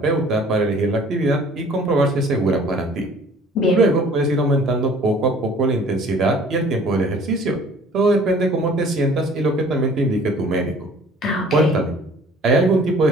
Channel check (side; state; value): both; normal; correlation 0.52